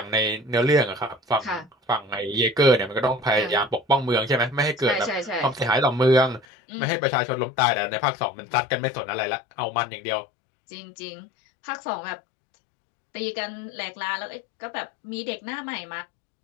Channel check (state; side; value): drops out; right; at 6.5 s